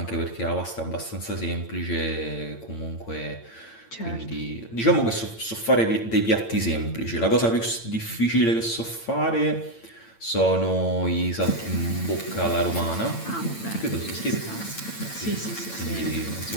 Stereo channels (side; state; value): right; late; 8.9 ms